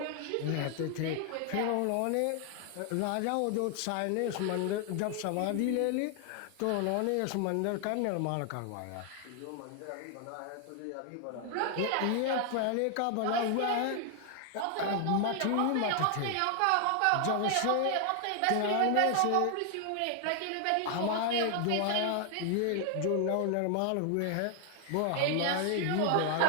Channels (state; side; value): different; both; correlation 0.00